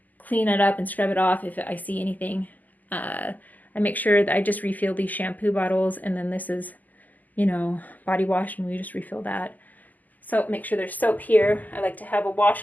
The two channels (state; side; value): late; right; 0.082 ms